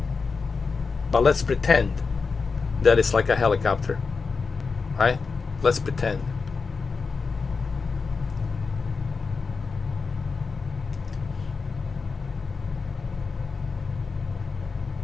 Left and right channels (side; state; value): right; quieter; 4.7 dB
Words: But let's pretend that it's like a helicopter. Right? Let's pretend.